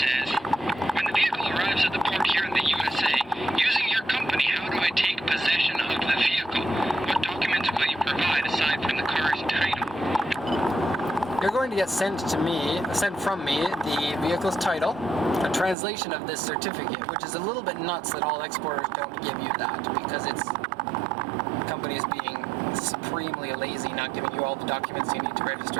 when the vehicle arrives at the port here in the USA, using your company, how do I take possession of the vehicle? What documents will you provide aside from the car's title? You're going to get sent from me, the vehicle's title, a translation of this certificate, which is a little bit nuts that all exporters don't give you that, because it's companies being supremely lazy, not giving you all the documents you need to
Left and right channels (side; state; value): left; drops out; at 15.8 s